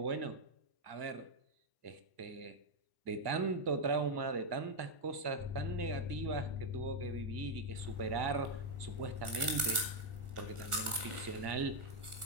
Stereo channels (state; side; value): late; left; 1.4 ms